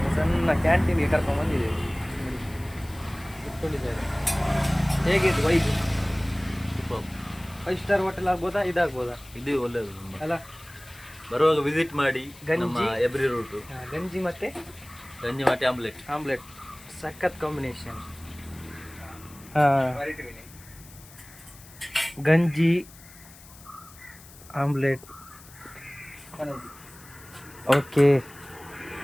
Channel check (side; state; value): left; noise; hiss, 21 dB below the sound